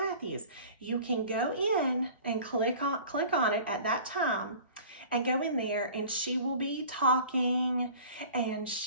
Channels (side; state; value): both; inverted; correlation -0.44